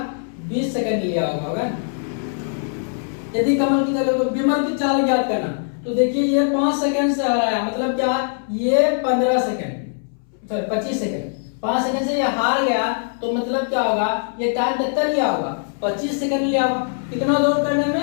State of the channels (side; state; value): right; silent; 65 dB below the other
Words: 20 सेकंड लिया होगा। यदि कमल की चाल तो विमल की चाल ज्ञात करना, तो देखिए ये 5 सेकंड से हराया, मतलब क्या ये 15 सेकंड सॉरी 25 सेकंड, 5 सेकंड से ये हार गया, तो मतलब क्या होगा ये टाइम कितना लिया होगा 25 सेकंड लिया हुआ। कितना दौड़ करने